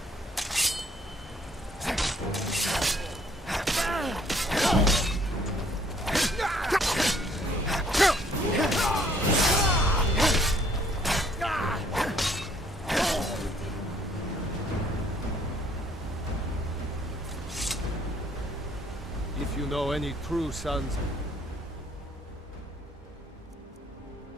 If you know any true sons...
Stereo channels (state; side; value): normal; both; correlation 0.62